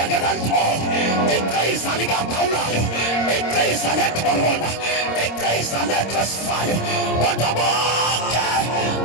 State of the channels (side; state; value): right; late; 26 ms